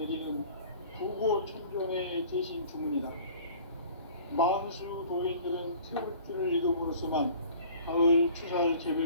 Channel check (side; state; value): both; inverted; correlation -0.47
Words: 부고천존의 대신 주문이다. 만수 도인들은 태극주를 읽음으로써만 가을 추살